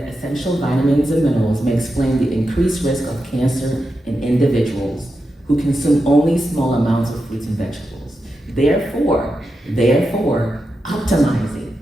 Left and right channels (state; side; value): normal; both; correlation 0.88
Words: vitamins and minerals may explain the increased risk of cancer in individuals who consume only small amounts of fruits and vegetables. Therefore, optimizing